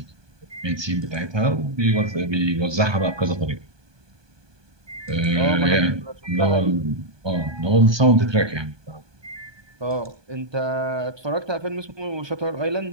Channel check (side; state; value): left; late; 1.2 ms